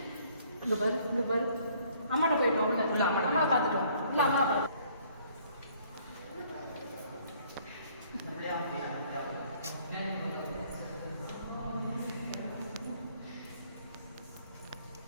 இங்க பாரு இங்க பாரு அம்மாட்ட போயிட்டு உள்ள இல்லை அம்மா பார்த்துட்டு இல்லை அம்மா பார்த்து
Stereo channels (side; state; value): both; inverted; correlation -0.61